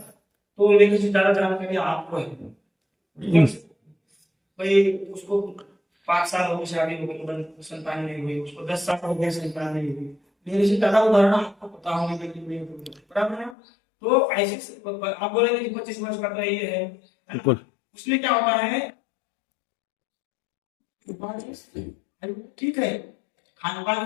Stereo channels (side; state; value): right; drops out; at 13.6 s